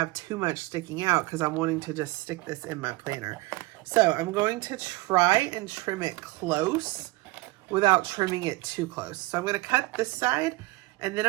too much sticking out because I'm wanting to just stick this in my planner. So I'm going to try and trim it close without trimming it too close. So I'm going to cut this side and then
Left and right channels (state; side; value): quieter; left; 21.8 dB